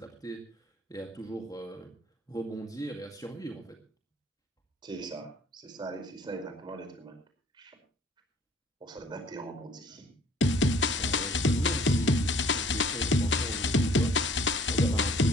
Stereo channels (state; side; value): normal; both; correlation 0.55